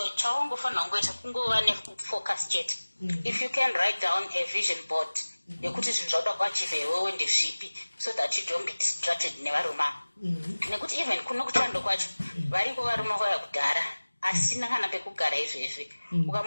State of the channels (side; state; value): both; inverted; correlation -1.00